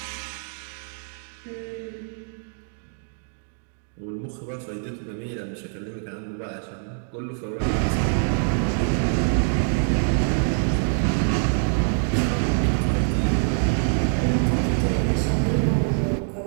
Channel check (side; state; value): left; silent; digital silence